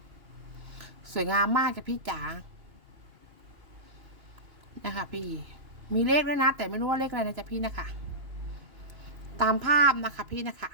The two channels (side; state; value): left; late; 3.0 ms